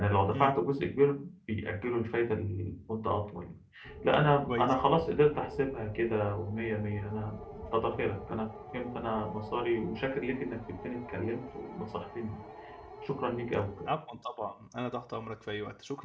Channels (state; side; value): identical; both; correlation 1.00